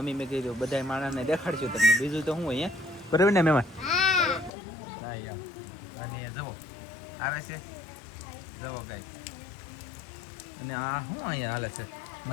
અમે મેં કીધું બધા માણસને દેખાડશું તમને બીજું તો હું અહીંયા બરાબર ને મહેમાન. હા એમ અને જવો આવે છે જવો ગાઈસ. અને આ શું અહીંયા હાલે છે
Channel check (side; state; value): right; drops out; at 4.5 s